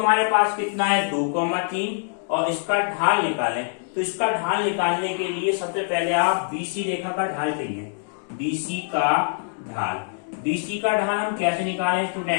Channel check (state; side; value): silent; right; digital silence